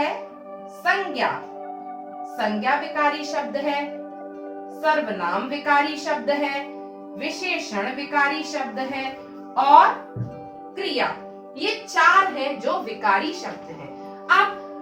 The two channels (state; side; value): identical; both; correlation 1.00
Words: संज्ञा विकारी शब्द है, सर्वनाम विकारी शब्द है, विशेषण विकारी शब्द है और क्रिया। ये 4 हैं जो विकारी शब्द हैं।